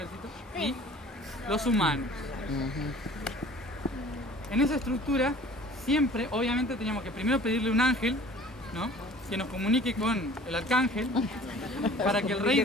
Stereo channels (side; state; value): both; normal; correlation 0.48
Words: y los humanos. En esa estructura, siempre, obviamente, teníamos que primero pedirle un ángel, ¿no? que nos comunique con el arcángel para que el rey